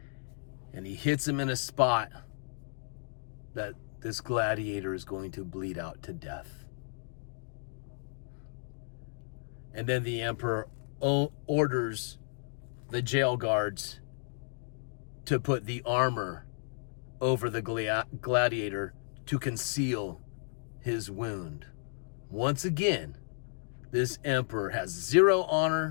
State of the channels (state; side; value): silent; right; digital silence